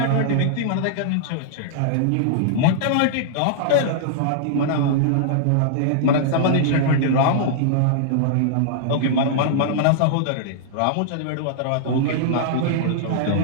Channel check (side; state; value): both; different; correlation -0.01